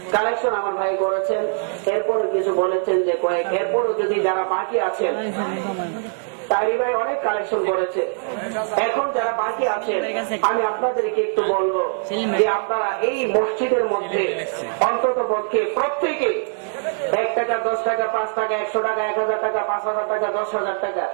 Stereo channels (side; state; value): left; silent; 57 dB below the other